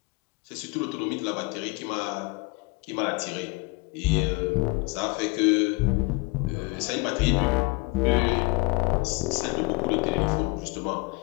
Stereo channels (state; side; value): quieter; right; 26.8 dB